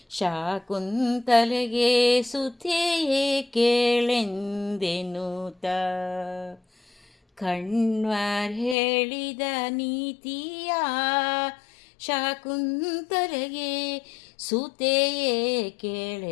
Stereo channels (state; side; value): drops out; right; at 8.8 s